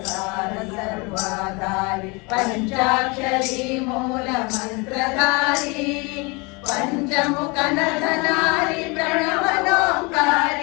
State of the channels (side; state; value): right; quieter; 28.4 dB